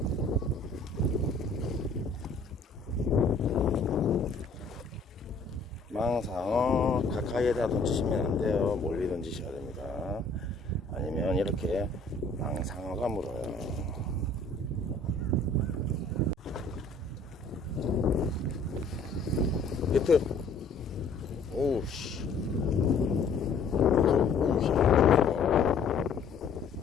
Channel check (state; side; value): quieter; right; 3.8 dB